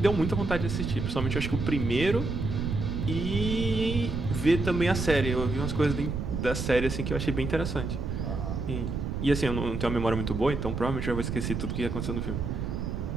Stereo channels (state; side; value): noise; right; rumble, 3 dB below the sound